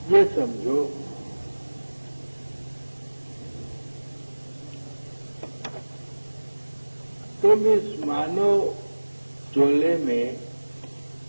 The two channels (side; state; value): both; inverted; correlation -1.00